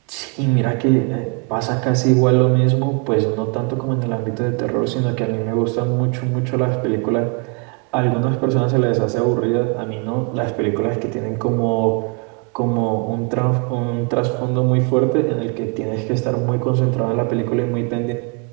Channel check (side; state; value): left; quieter; 36.1 dB